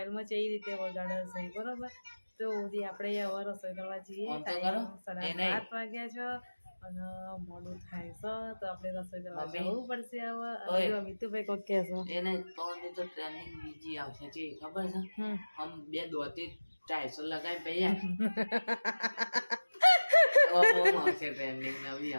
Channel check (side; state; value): both; inverted; correlation -1.00